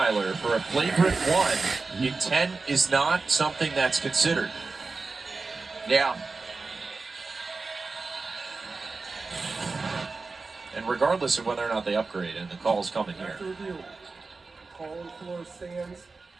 for a flagrant 1, intent is not something that's considered. Yeah. And regardless of whether or not they upgrade, and the call's coming here. After review, call on the floor stands.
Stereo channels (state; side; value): quieter; left; 4.0 dB